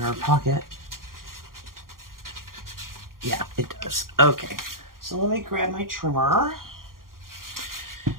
our pocket. Yeah, it does. Okay. So let me grab my trimmer.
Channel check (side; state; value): left; late; 0.91 ms